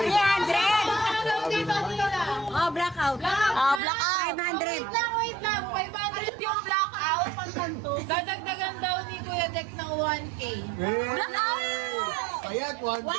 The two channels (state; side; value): drops out; left; at 3.8 s